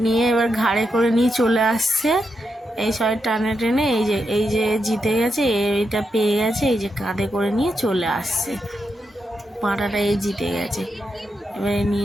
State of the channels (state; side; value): normal; both; correlation 0.85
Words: নিয়ে এবার ঘাড়ে করে নিয়ে চলে আসছে, এই সবাই টানে টেনে এই যে জিতে গেছে, এইটা পেয়ে গেছে, এই যে কাঁধে করে নিয়ে চলে আসছে, পাটাটা এই জিতে গেছে, এবারে